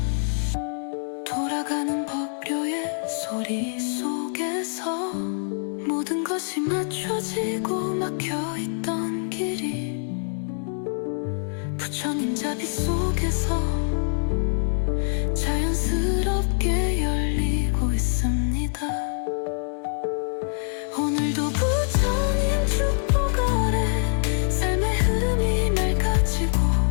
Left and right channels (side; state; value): right; silent; digital silence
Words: 돌아가는 법료의 소리 속에서 모든 것이 맞춰지고 막혀있던 길이 부처님 자비 속에서 자연스럽게 열리고 있습니다. 오늘도 부처님 축복 아래 삶의 흐름이 맑아지고